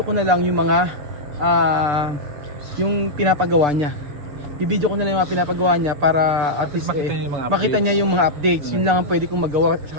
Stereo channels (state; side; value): late; left; 6.8 ms